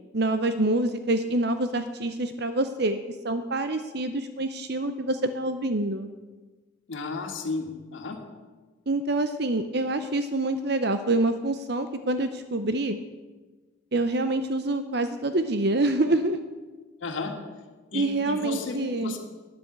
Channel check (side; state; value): both; normal; correlation 0.24